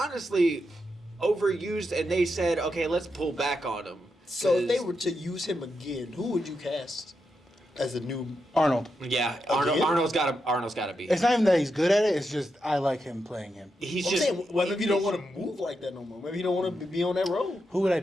overused, and they said, okay, let's pull back on him. So if they were to use him again, who would you cast as a new? Arnold. Yeah, Again? Arnold's got to be. It's not even that he's good at it, it's just I like him playing him. He's I'm just saying, well, maybe you don't want to move like that no more. Maybe you don't want to be on that road. Who would I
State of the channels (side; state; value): both; normal; correlation 0.85